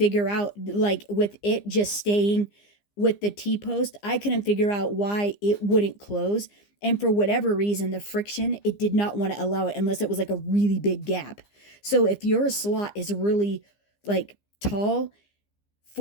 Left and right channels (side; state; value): right; late; 15 ms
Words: out, like with it just staying with the T-post, I couldn't figure out why it wouldn't close. And for whatever reason, the friction, it did not want to allow it unless it was like a really big gap. So if your slot is really like tall